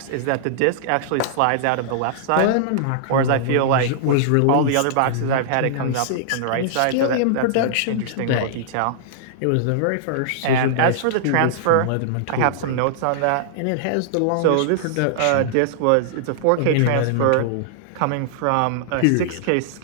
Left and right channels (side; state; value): both; different; correlation -0.01